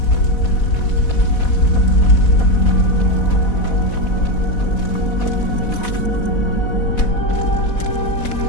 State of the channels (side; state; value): right; late; 4.1 ms